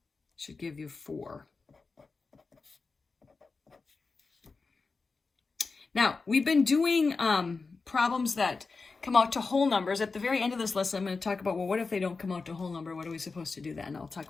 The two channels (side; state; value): right; quieter; 4.3 dB